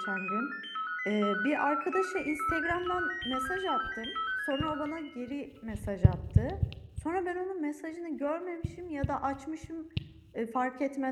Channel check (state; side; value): identical; both; correlation 1.00